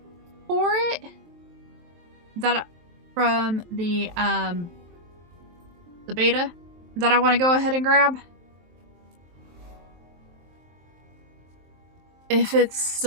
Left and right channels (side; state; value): left; late; 23 ms